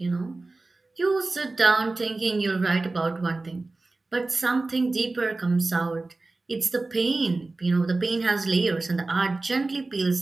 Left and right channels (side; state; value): left; quieter; 3.3 dB